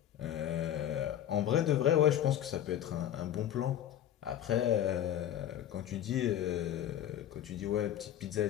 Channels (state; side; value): quieter; right; 11.0 dB